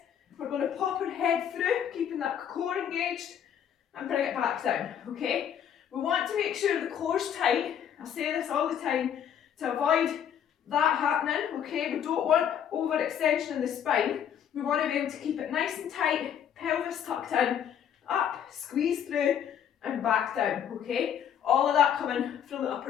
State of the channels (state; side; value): quieter; right; 9.0 dB